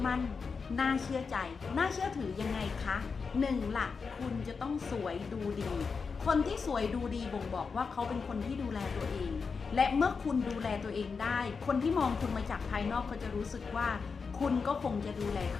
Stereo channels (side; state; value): right; quieter; 5.2 dB